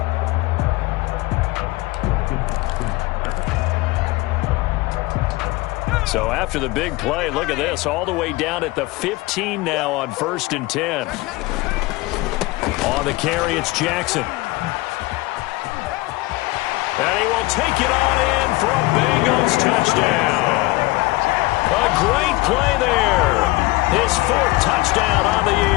So after the big play, look at this, all the way down at the 15 now on 1st and 10. On the carry, it's Jackson. And he will take it on in for a Bengals touchdown. A great play there. His 4th touchdown on the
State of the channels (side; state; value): right; quieter; 20.9 dB